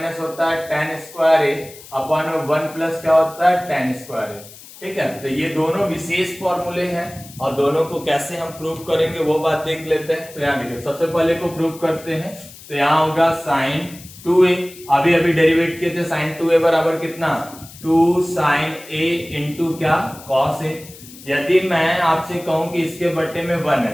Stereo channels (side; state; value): left; noise; hiss, 19 dB below the sound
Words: होता है tan स्क्वायर a अपॉन में 1 प्लस क्या होता है? tan square a। ठीक है, तो ये दोनों विशेष फॉर्मूले हैं, और दोनों को कैसे हम प्रूव करेंगे वो बात देख लेते हैं। तो यहाँ देखिए, सबसे पहले को प्रूव करते हैं। तो यहाँ होगा sin 2a, अभी डेरिवेट किए थे, sin 2a बराबर कितना? 2 sin a इंटू क्या? cos a। यदि मैं आपसे कहूं कि इसके बट्टे में 1